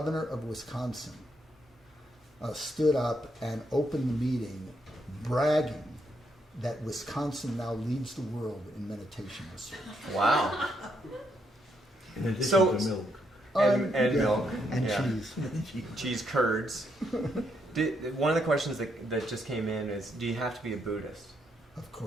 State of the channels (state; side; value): normal; both; correlation 0.77